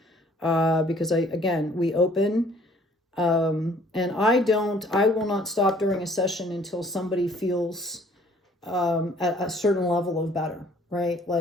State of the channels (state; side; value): normal; both; correlation 0.57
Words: because we open. And I will not stop during a session until somebody feels at a certain level of better, right?